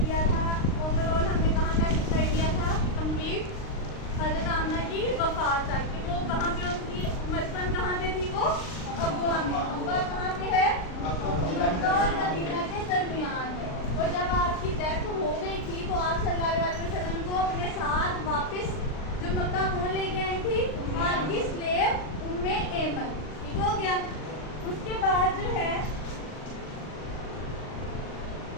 था ओवरऑल, हमने कहाँ तक कर दिया था कंप्लीट, हज़रत आमना की वफ़ात तक कि वो कहाँ पे उनकी मदफन कहाँ पे थी, वो अबवा में। अबवा कहाँ पे है, मक्का और मदीना के दरमियान है। और जब आपकी डेथ हो गई थी तो आप सल्लल्लाहु अलैहि वसल्लम को अपने साथ वापस जो मक्का कौन लेके आई थी, आपकी स्लेव उम्मे ऐमन। ठीक हो गया। उसके बाद जो है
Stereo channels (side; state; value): right; late; 39 ms